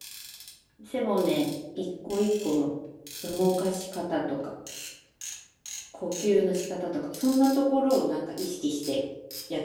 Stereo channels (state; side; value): identical; both; correlation 1.00